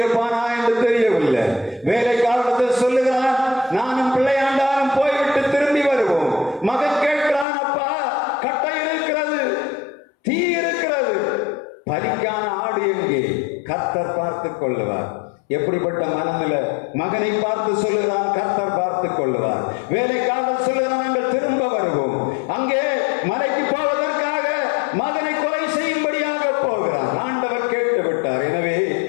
என்று தெரியவில்லை. வேலைக்காரத்தில் சொல்லுகிறான், நானும் பிள்ளையாண்டாலும் போய்விட்டு திரும்பி வருவோம். மகன் கேட்கிறான், அப்பா கட்டை இருக்கிறது, தீ இருக்கிறது, பலிக்கான ஆடு எங்கே? கர்த்தர் பார்த்துக் கொள்ளுவார். எப்படிப்பட்ட மனநிலை! மகனை பார்த்து சொல்லுகிறான், கர்த்தர் பார்த்துக் கொள்ளுவார். வேலைக்காரர் சொல்லுகிறான், நாங்கள் திரும்ப வருவோம். அங்கே மலைக்கு போவதற்காக மகனை கொலை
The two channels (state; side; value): drops out; right; at 7.5 s